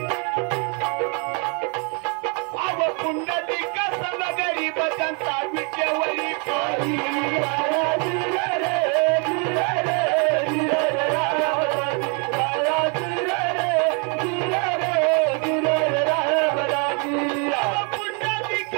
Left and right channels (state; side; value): quieter; left; 36.2 dB